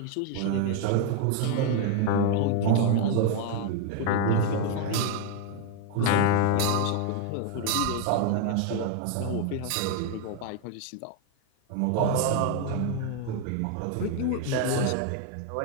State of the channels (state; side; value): different; both; correlation 0.00